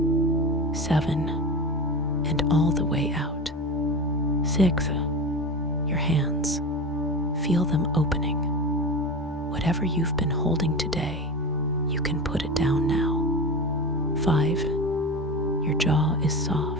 7. And all the way out. 6. Your hands. Feel them opening. Whatever you've been holding today, you can put it down now. 5. Your jaw is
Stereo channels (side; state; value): both; normal; correlation 0.27